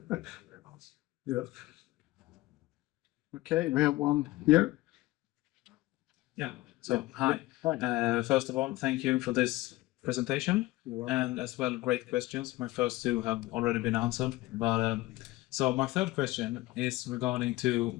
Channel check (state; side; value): quieter; right; 18.8 dB